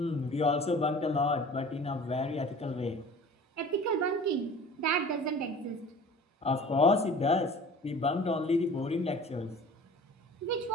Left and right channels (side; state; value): both; normal; correlation 0.43